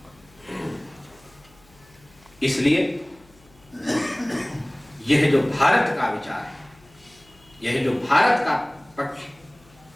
इसलिए यह जो भारत का विचार है, यह जो भारत का पक्ष,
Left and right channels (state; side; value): noise; left; hum, 28 dB below the sound